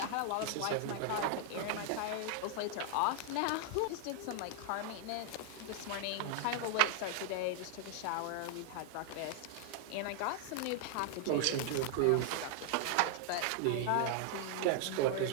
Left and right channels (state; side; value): different; both; correlation 0.00